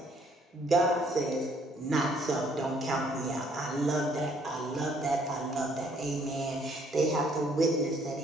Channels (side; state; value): both; normal; correlation 0.64